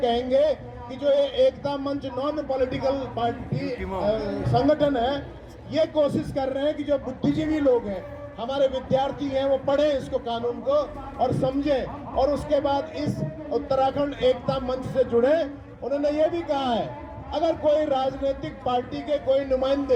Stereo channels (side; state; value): both; identical; correlation 1.00